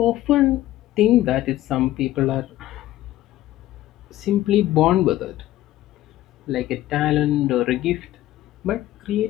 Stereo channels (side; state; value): right; quieter; 14.7 dB